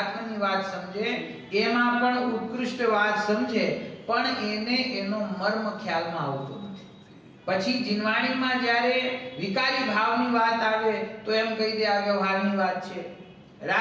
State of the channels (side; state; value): both; identical; correlation 1.00